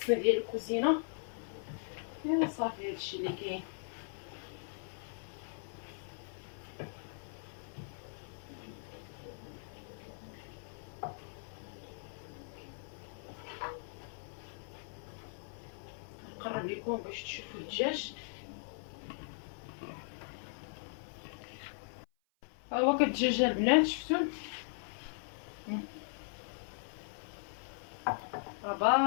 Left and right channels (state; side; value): silent; right; 52 dB below the other